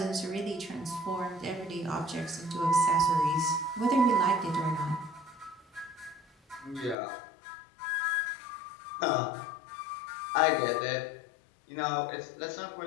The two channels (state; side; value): drops out; right; at 7.0 s